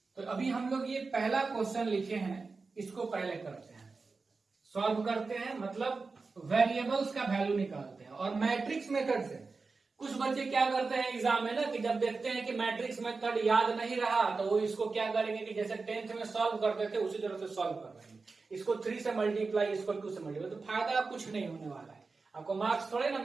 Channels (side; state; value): left; quieter; 4.2 dB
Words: तो अभी हम लोग ये पहला क्वेश्चन लिखे हैं, इसको पहले करते हैं, सॉल्व करते हैं, मतलब वेरिएबल्स का वैल्यू निकालते हैं। और मैट्रिक्स मेथड से कुछ बच्चे क्या करते हैं एग्जाम में ना, कि जब देखते हैं कि मैट्रिक्स मेथड याद नहीं रहा तो वो इसको क्या करेंगे कि जैसे 10th में सॉल्व करते थे उसी तरह से सॉल्व कर रहे हैं, इसको 3 से मल्टीप्लाई, इसको 2 से मल्टीप्लाई। तो फायदा कुछ नहीं होने वाला है, आपको मार्क्स थोड़े ना